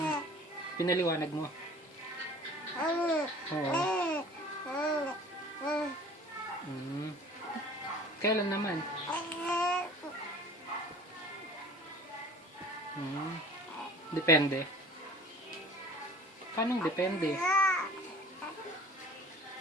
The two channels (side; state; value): both; normal; correlation 0.45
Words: Pinaliwanag mo. Oo. Kailan naman? Depende. Paano depende?